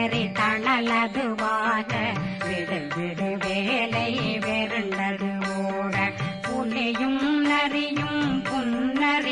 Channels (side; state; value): both; identical; correlation 1.00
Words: தணலதுவாக விடு விடு வேலை வெருண்டது ஓட புலியும் நரியும்